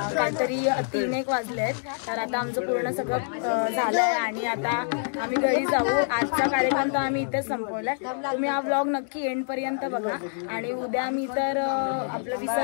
काहीतरी 3-1 वाजले आहेत. तर आता आमचं पूर्ण सगळं झालंय आणि आता आम्ही घरी जाऊ. आजचा कार्यक्रम तर आम्ही इथेच संपवलाय. तुम्ही हा व्लॉग नक्की एंड पर्यंत बघा आणि उद्या मी तर आपलं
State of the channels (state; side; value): silent; right; digital silence